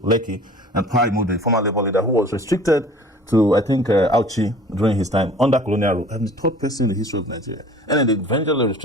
Lekki, and Pride Mode, the former Labour leader, who was restricted to, I think, Auchi during his time under colonial rule. I'm the third person in the history of Nigeria. And then they eventually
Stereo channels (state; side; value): normal; both; correlation 0.47